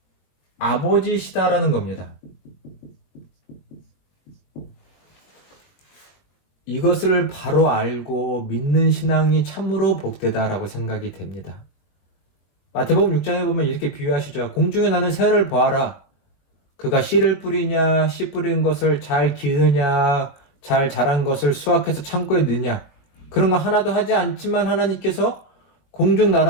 아버지시다라는 겁니다. 이것을 바로 알고 믿는 신앙이 참으로 복되다라고 생각이 됩니다. 마태복음 6장에 보면 이렇게 비유하시죠. 공중에 나는 새를 보아라. 그가 씨를 뿌리냐, 씨 뿌린 것을 잘 기르냐, 잘 자란 것을 수확해서 창고에 넣느냐. 그런 거 하나도 하지 않지만 하나님께서 공중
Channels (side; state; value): right; late; 21 ms